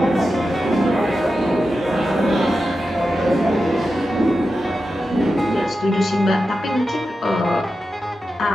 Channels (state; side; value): normal; both; correlation 0.91